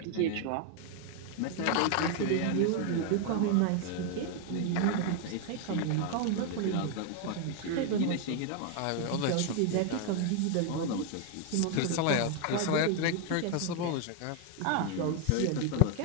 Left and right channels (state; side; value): different; both; correlation 0.01